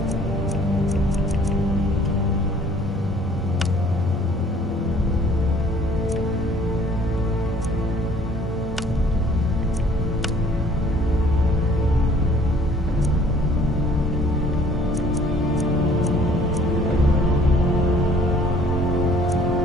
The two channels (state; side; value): normal; both; correlation 0.56